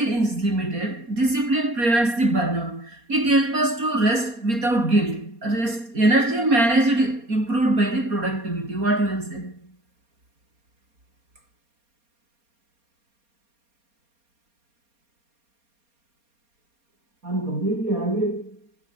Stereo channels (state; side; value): late; left; 4.3 ms